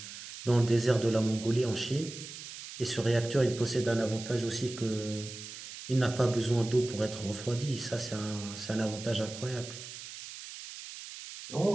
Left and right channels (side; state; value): right; noise; hiss, 12 dB below the sound